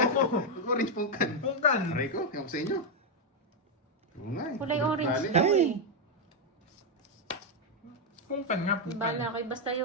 Orange pungkan. Pungkan. Aray ko, ewan ko sa inyo. Oo nga eh. Kulay orange Bali. daw eh. Pungkan nga, pungkan. Bala kayo. Basta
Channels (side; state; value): both; normal; correlation 0.02